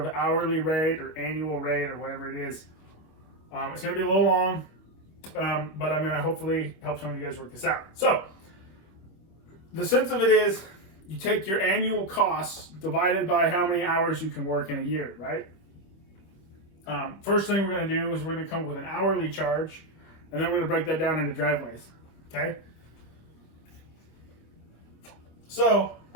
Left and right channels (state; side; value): late; right; 26 ms